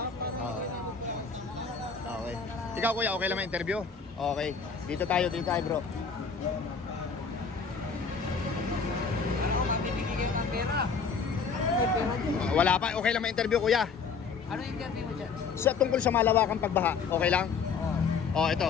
Okay. Ikaw kuya, okay lang ma-interview? Okay. Dito tayo bro. Wala pa, okay lang ma-interview kuya. Ano yung interview mo dyan? Sa tungkol sa malawakang pagbaha, okay lang?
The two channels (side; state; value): right; quieter; 5.4 dB